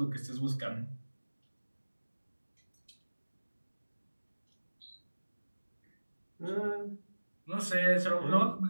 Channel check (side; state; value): both; inverted; correlation -1.00